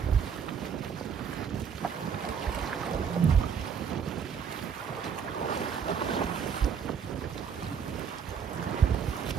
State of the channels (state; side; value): quieter; left; 7.0 dB